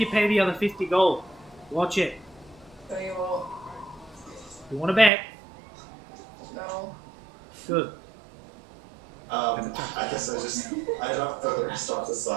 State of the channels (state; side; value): drops out; left; at 5.1 s